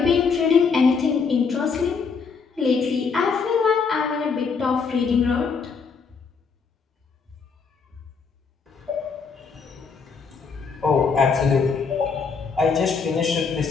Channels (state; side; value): quieter; right; 5.4 dB